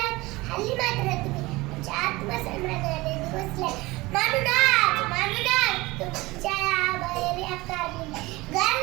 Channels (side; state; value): left; quieter; 21.3 dB